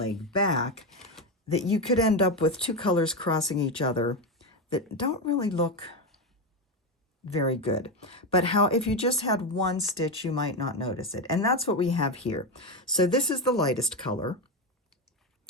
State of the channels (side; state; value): both; normal; correlation 0.12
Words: back, that you could end up with two colors crossing each other that don't really look very good. But how if you just had one stitch, you might not notice it. And that's what we have here. So this is the lightest color.